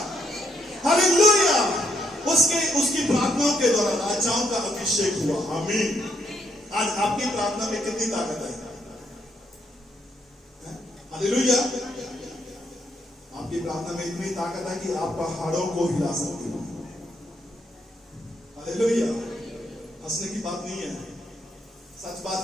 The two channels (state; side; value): normal; both; correlation 0.74